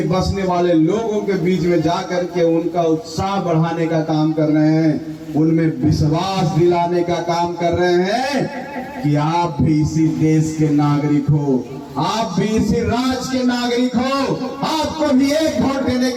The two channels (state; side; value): identical; both; correlation 1.00